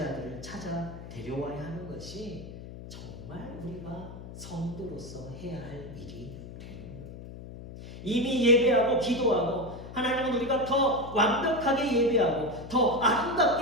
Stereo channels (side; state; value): left; noise; hum, 13 dB below the sound